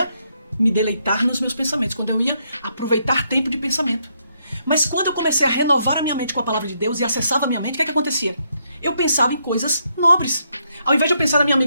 me deleitar nos meus pensamentos, quando eu ia aproveitar tempo de pensamento. Mas quando eu comecei a renovar a minha mente com a palavra de Deus e acessava a minha mente, o que acontecia? Eu pensava em coisas nobres. Ao invés de eu pensar na minha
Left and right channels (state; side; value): inverted; both; correlation -0.76